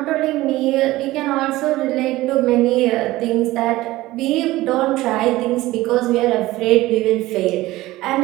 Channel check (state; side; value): quieter; left; 17.7 dB